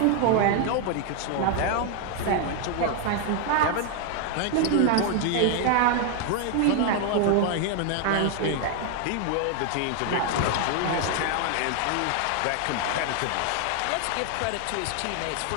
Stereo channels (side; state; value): both; different; correlation 0.00